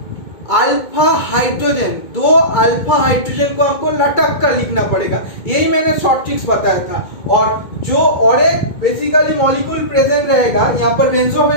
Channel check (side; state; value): right; late; 2.2 ms